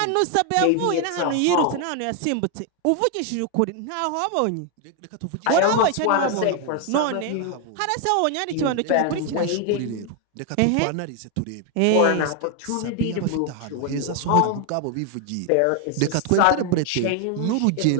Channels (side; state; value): both; different; correlation 0.01